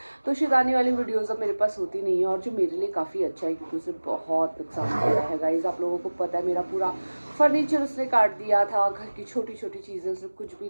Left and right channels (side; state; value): both; inverted; correlation -1.00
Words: तो शैतानी वाली वीडियोज़ अब मेरे पास होती नहीं है, और जो मेरे लिए काफ़ी अच्छा है, क्योंकि उसे बहुत नुकसान किया है। गाइज़, आप लोगों को पता है मेरा पूरा फर्नीचर उसने काट दिया था, घर की छोटी छोटी चीज़ें उसने कुछ भी